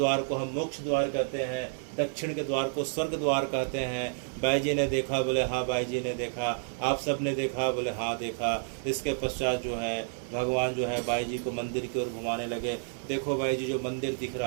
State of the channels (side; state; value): left; silent; digital silence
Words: को हम मोक्ष द्वार कहते हैं, दक्षिण के द्वार को स्वर्ग द्वार कहते हैं। बाई जी ने देखा? बोले हाँ बाई जी ने देखा। आप सब ने देखा? बोले हाँ देखा। इसके पश्चात जो है भगवान जो है बाई जी को मंदिर की ओर घुमाने लगे। देखो बाई जी जो मंदिर दिख